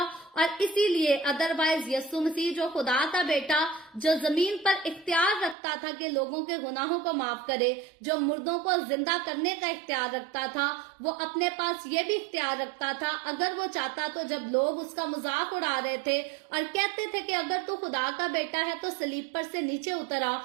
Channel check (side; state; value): left; drops out; at 5.6 s